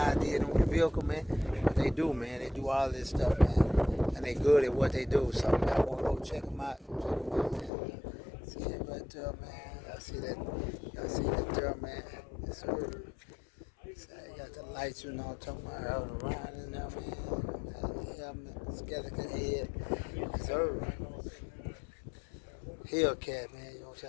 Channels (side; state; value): right; drops out; at 7.7 s